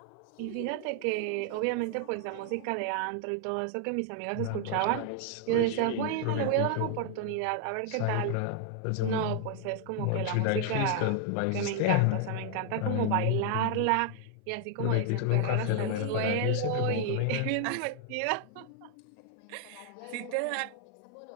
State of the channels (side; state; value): both; different; correlation 0.00